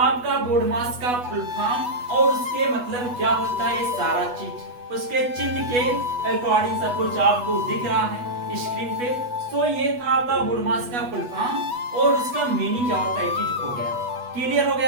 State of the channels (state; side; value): late; left; 8.2 ms